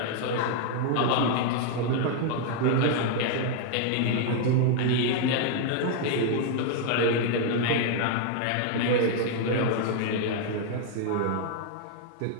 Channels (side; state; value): both; different; correlation 0.00